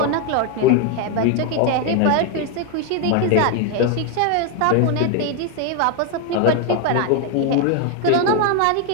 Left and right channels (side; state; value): both; different; correlation 0.01